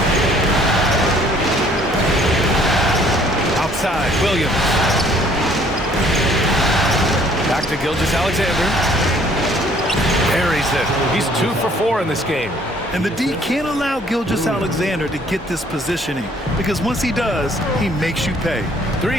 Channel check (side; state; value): both; normal; correlation 0.60